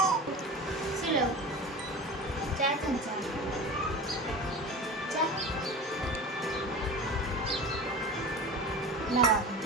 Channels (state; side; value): normal; both; correlation 0.32